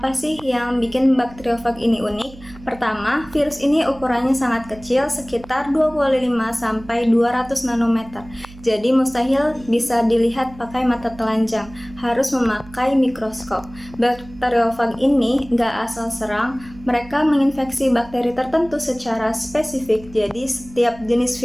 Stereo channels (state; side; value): noise; right; hum, 19 dB below the sound